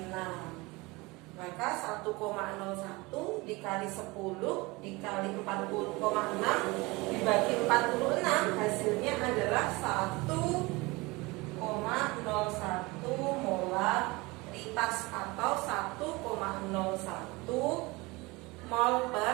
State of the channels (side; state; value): left; quieter; 23.6 dB